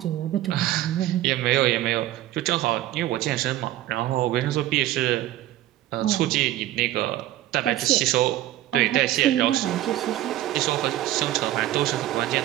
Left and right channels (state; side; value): quieter; left; 14.5 dB